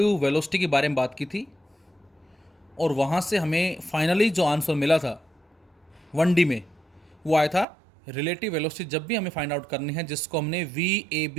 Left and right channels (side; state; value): left; drops out; at 7.7 s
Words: वेलोसिटी के बारे में बात की थी और वहाँ से हमें फाइनली जो आंसर मिला था 1D में वो आया था रिलेटिव वेलोसिटी जब भी हमें फाइंड आउट करनी है, जिसको हमने